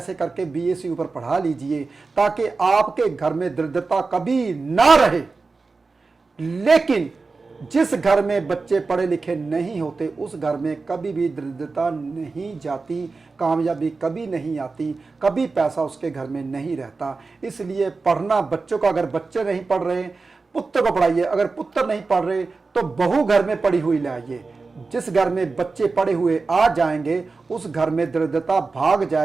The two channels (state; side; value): quieter; left; 4.1 dB